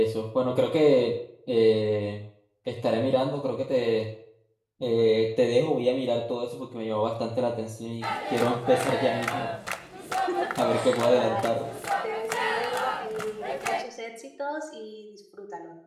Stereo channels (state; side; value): identical; both; correlation 1.00